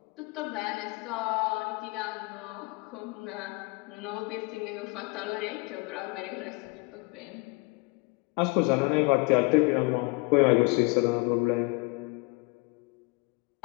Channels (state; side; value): quieter; right; 27.7 dB